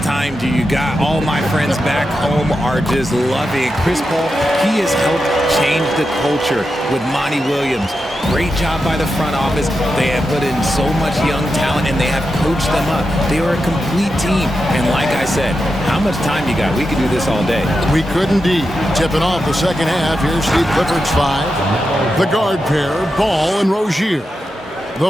do you got? All my friends back home are just loving it. Chris Paul, he has helped change the culture with Monty Williams. Great job by the front office. They have put in so much young talent, and they have coached them up. They are a complete team. And like I said, how much time you got? We could do this all day. We could indeed. Tipping off the second half, here's Steve Clifford's 5. The guard pair, Ball and Rozier.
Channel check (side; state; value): both; normal; correlation 0.89